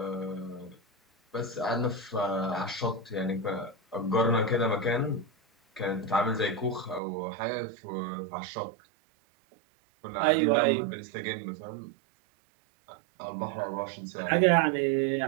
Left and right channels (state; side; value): drops out; left; at 7.0 s